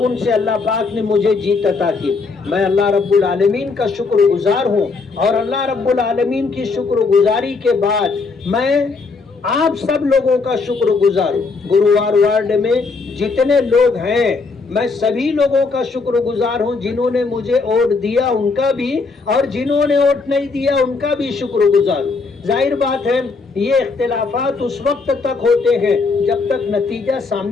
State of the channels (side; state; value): right; quieter; 4.3 dB